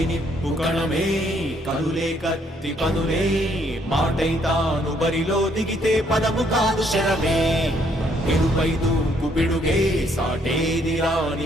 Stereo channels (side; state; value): both; normal; correlation 0.69